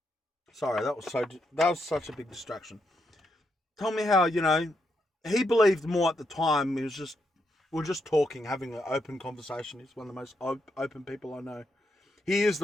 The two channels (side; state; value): both; normal; correlation 0.80